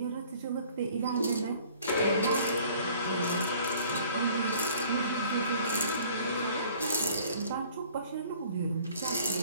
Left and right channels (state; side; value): inverted; both; correlation -0.54